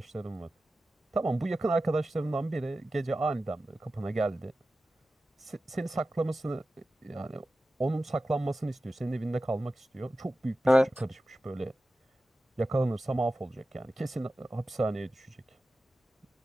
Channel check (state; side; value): normal; both; correlation 0.94